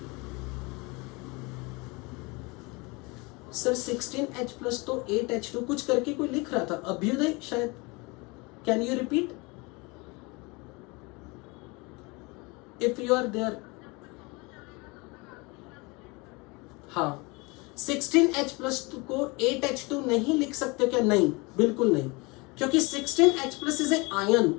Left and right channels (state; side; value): quieter; right; 26.6 dB